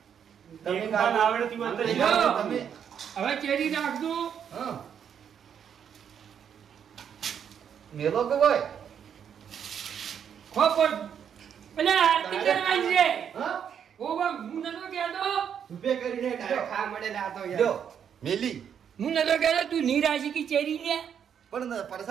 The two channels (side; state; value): left; quieter; 8.2 dB